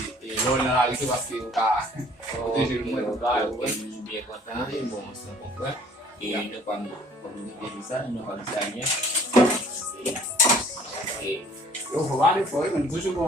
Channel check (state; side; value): normal; both; correlation 0.55